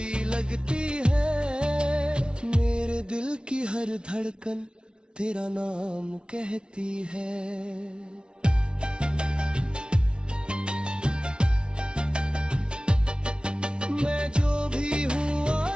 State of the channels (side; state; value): left; late; 0.056 ms